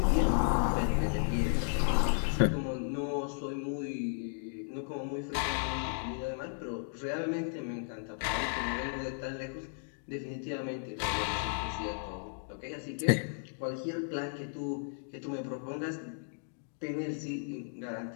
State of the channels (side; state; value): right; silent; digital silence